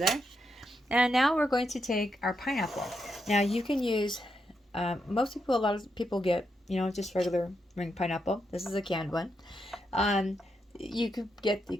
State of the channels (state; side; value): normal; both; correlation 0.83